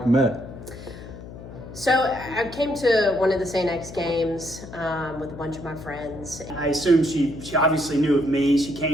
met. So I came to one of the St. X games with a bunch of my friends. I assume she obviously knew of me. She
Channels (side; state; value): left; noise; hum, 14 dB below the sound